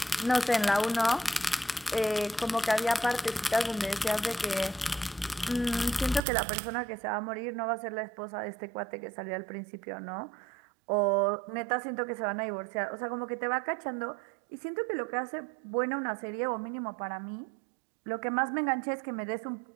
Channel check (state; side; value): drops out; left; at 6.2 s